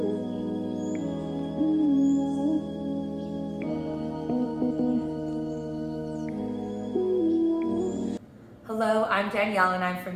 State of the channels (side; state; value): both; identical; correlation 1.00